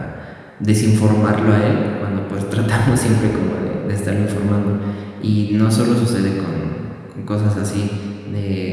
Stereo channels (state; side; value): identical; both; correlation 1.00